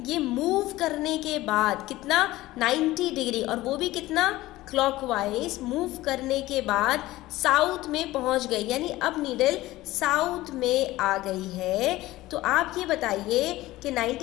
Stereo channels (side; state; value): right; quieter; 17.3 dB